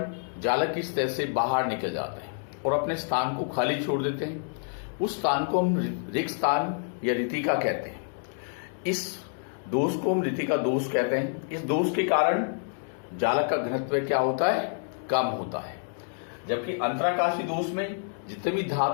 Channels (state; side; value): silent; right; digital silence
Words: जालक की सतह से बाहर निकल जाते हैं और अपने स्थान को खाली छोड़ देते हैं। उस स्थान को हम रिक्त स्थान या रीतिका कहते हैं। इस दोष को हम रीतिका दोष कहते हैं। इस दोष के कारण जालक का घनत्व क्या होता है, कम होता है। जबकि अंतराकाशी दोष में जितने भी